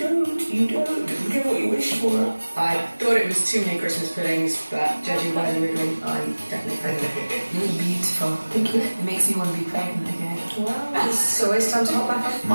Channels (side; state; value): both; inverted; correlation -1.00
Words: You get what you wish for. I thought it was too many Christmas puddings, but judging by the wriggling, I'm definitely pregnant. you're beautiful. Thank you. It makes me want to be pregnant again. Wow. So it's time to hop back up.